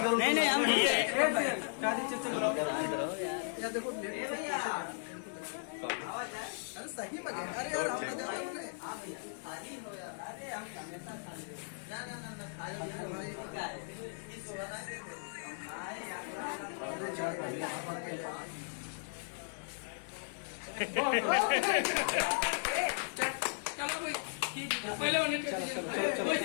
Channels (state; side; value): silent; right; digital silence